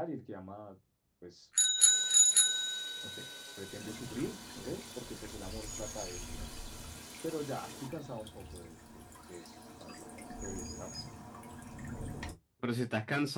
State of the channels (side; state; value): both; identical; correlation 1.00